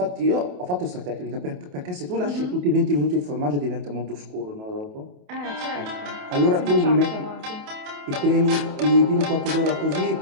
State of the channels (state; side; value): late; left; 28 ms